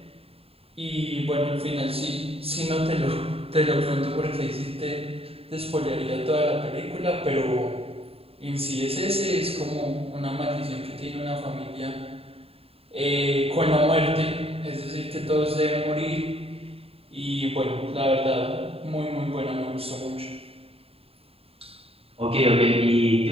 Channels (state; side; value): late; left; 0.28 ms